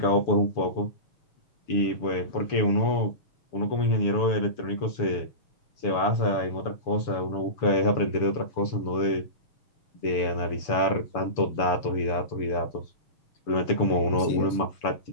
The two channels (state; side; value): late; right; 6.9 ms